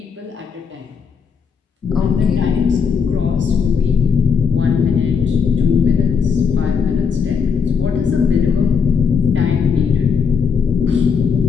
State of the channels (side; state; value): right; quieter; 6.2 dB